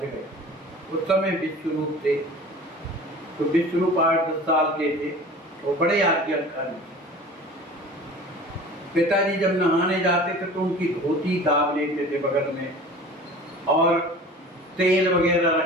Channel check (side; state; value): both; normal; correlation 0.41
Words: गए। उस समय विश्वरूप थे, तो विश्वरूप 8-10 साल के थे, वो बड़े आज्ञाकारी। पिताजी जब नहाने जाते थे तो उनकी धोती दाब लेते थे बगल में और तेल वगैरह